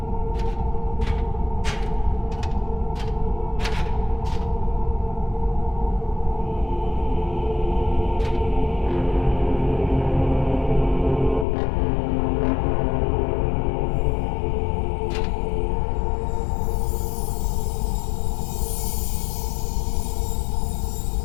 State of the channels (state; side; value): drops out; right; at 11.5 s